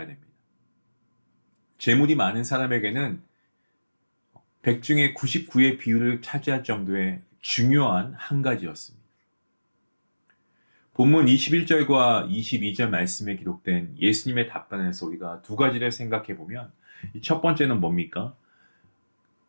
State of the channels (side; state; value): both; inverted; correlation -1.00